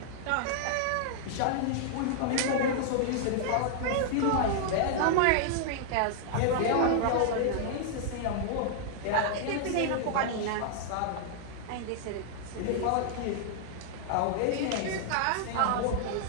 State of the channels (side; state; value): both; different; correlation -0.01